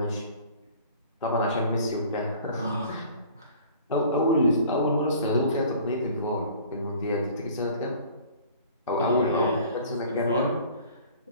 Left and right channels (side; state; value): both; inverted; correlation -0.48